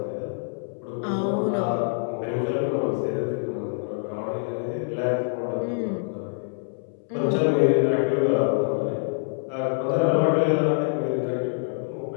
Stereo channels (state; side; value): silent; right; 61 dB below the other